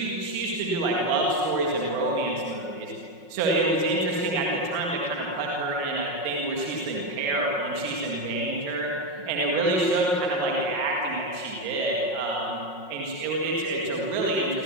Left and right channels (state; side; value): late; left; 5.5 ms